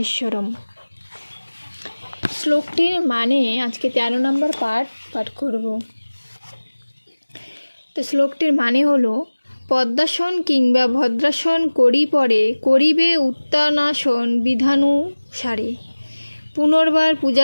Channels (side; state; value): both; inverted; correlation -1.00